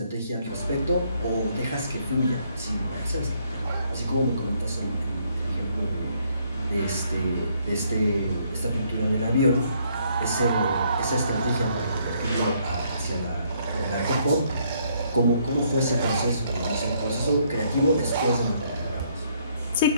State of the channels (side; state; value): both; inverted; correlation -0.69